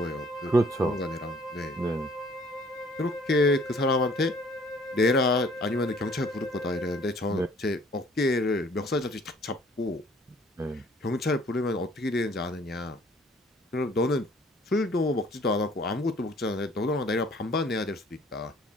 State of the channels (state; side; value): normal; both; correlation 0.57